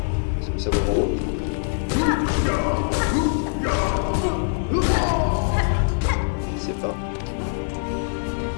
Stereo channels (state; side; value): silent; right; 63 dB below the other